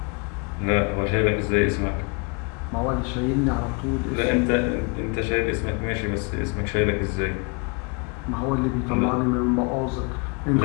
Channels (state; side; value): quieter; right; 32.4 dB